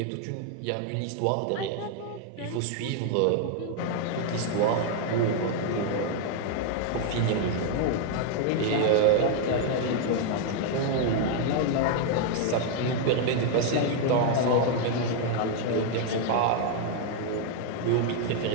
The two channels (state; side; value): different; both; correlation 0.00